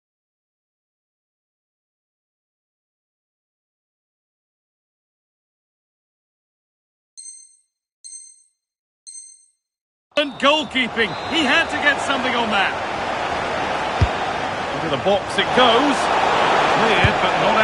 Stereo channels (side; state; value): both; identical; correlation 1.00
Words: Goalkeeping. He had to get something on that. Into the box it goes. Cleared, but not